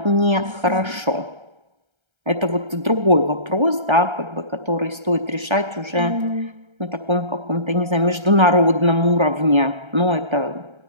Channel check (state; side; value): late; left; 1.3 ms